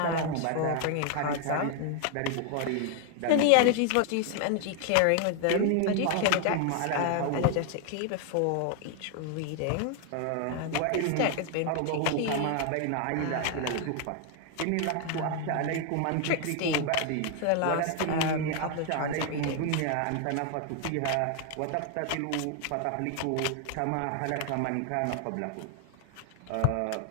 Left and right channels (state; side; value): different; both; correlation 0.00